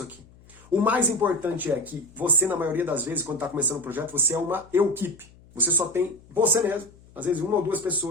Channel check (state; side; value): noise; left; hum, 25 dB below the sound